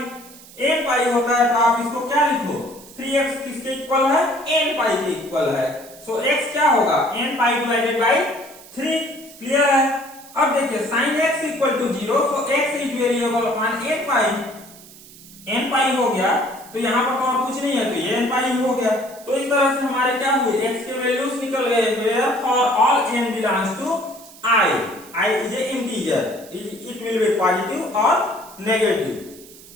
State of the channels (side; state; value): right; noise; hiss, 20 dB below the sound